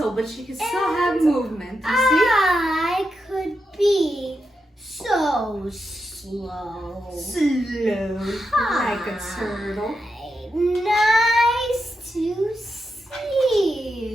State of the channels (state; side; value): normal; both; correlation 0.86